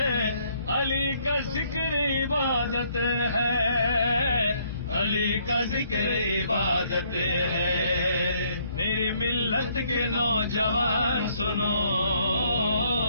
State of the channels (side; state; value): both; inverted; correlation -0.67